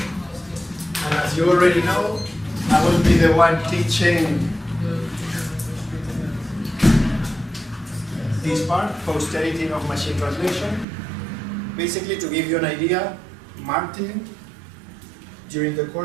as you already know, I will be the one teaching this part, post-editing of machine translation. Basically, to give you an idea, Martin, during the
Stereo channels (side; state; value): left; drops out; at 10.9 s